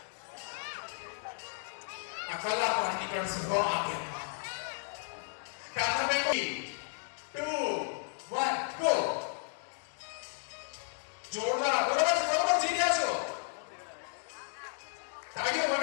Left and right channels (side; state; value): right; silent; digital silence